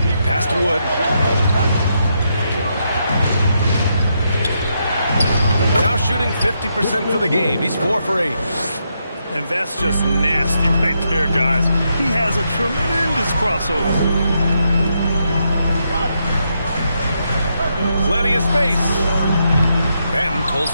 Pass to Wood. Now shooting 50% for the game. He's 4 for 8. And that's just nasty right there, guys. He has a tremendous crossover. Plenty of space. Ben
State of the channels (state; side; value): inverted; both; correlation -0.81